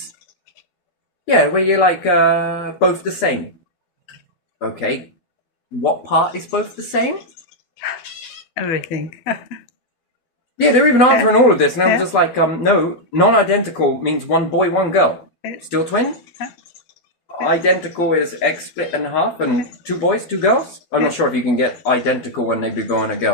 Yeah, where you're like both the same. Okay, what part is both the same? Everything. Yeah, they're even answering all of this, and I was Yeah. just like, no, non-identical means one boy, one girl. Yeah. Still twin? Identical is egg split in half, and two boys, two girls? I'm not sure if you can get identical when they be boy and a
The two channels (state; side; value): late; right; 12 ms